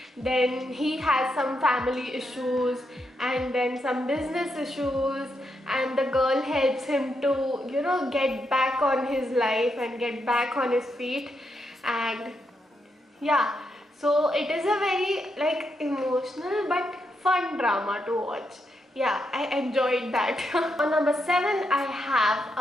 then he has some family issues and then some business issues, and the girl helps him to get back on his life and get back on his feet. And yeah, so it is a very like emotional but fun drama to watch. Yeah, I enjoyed that. On number 7 I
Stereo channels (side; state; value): both; normal; correlation 0.82